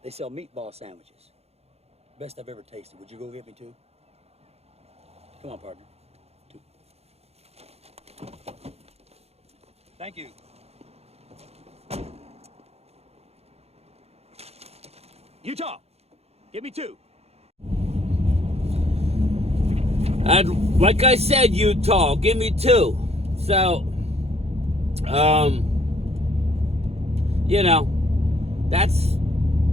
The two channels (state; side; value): late; left; 0.30 ms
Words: They sell meatball sandwiches. Best I've ever tasted. Would you go get me 2? Come on, partner. 2. Thank you. Utah, give me 2. And like I said, Utah, give me 2. So, you know, that's